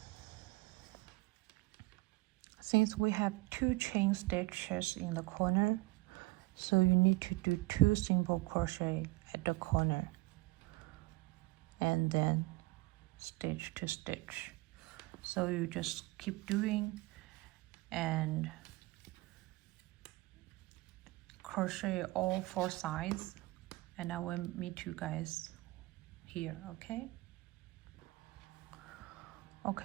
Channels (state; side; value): quieter; left; 21.6 dB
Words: since we have 2 chain stitches in the corner, so you need to do 2 single crochet at the corner and then stitch to stitch. So you just keep doing and crochet all 4 sides, and I will meet you guys here. Okay,